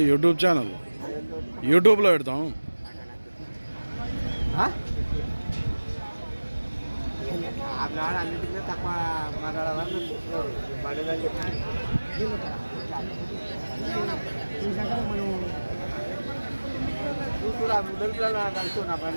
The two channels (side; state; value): both; inverted; correlation -1.00